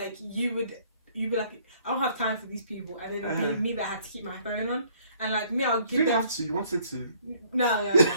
you'd be like, I don't have time for these people. And then it'd be me that had to keep my phone on. And like me, I'll give them... You didn't have to, you wanted to. No.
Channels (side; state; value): both; inverted; correlation -0.61